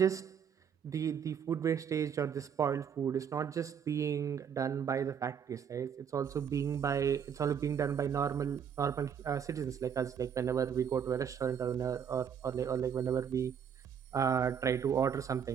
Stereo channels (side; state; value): left; quieter; 7.8 dB